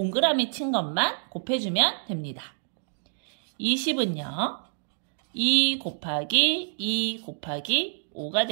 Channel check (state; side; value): silent; left; digital silence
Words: 친 것만 곱해주면 됩니다. 20은요, 2 곱하기 2 곱하기 5가